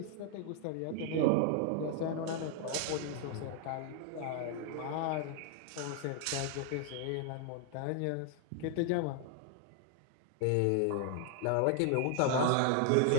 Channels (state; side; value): different; both; correlation 0.00